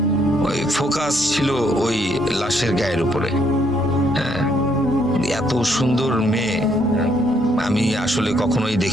ওই ফোকাস ছিল ওই লাশের গায়ের উপরে। হ্যাঁ, এত সুন্দর মেয়ে আমি আসলে কখনোই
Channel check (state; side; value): normal; both; correlation 0.70